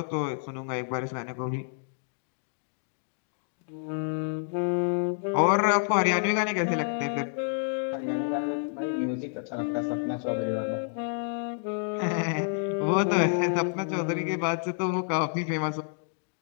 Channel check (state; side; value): silent; right; digital silence